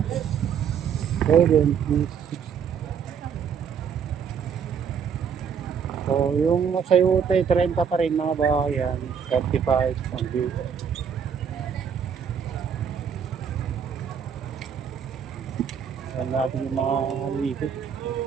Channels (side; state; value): left; quieter; 7.2 dB